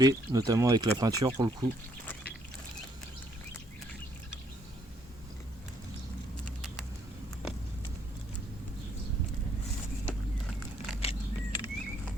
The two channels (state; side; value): normal; both; correlation 0.69